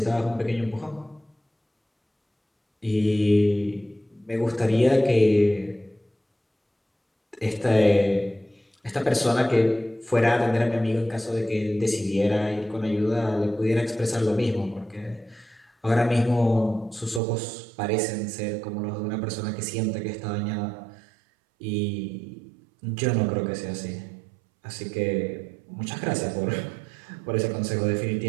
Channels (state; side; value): drops out; left; at 17.2 s